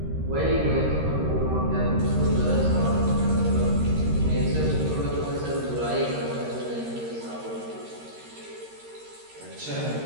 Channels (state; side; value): late; left; 13 ms